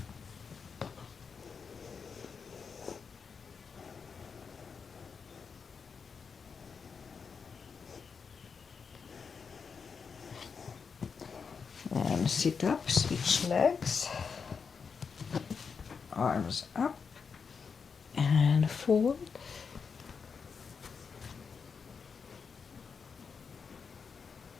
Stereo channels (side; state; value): right; quieter; 5.8 dB